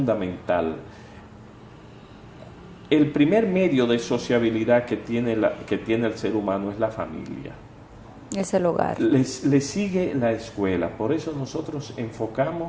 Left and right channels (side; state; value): both; identical; correlation 1.00